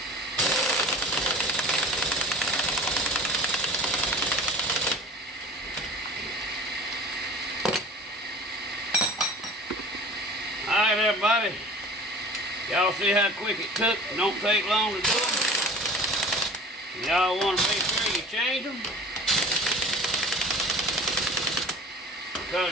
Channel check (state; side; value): normal; both; correlation 0.41